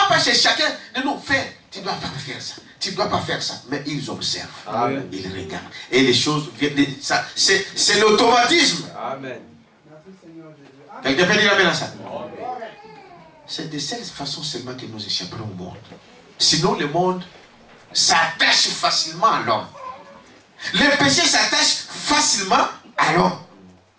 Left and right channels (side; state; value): both; identical; correlation 1.00